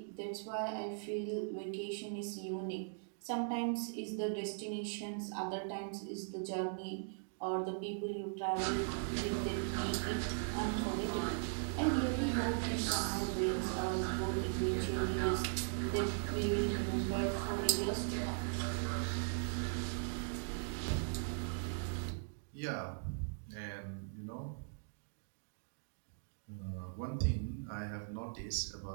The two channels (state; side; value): silent; left; digital silence